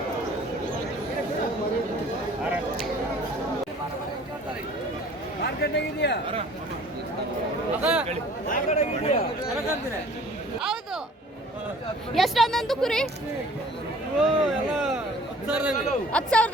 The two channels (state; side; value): normal; both; correlation 0.51